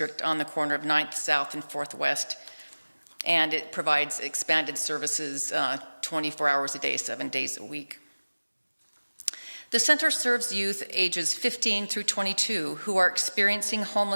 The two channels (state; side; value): inverted; both; correlation -1.00